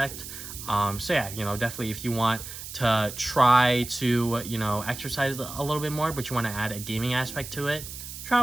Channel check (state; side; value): noise; right; hiss, 11 dB below the sound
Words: So yeah, you know, definitely if you want to try to, you know, exercise a little bit more, but you want to add a gaming aspect to it, try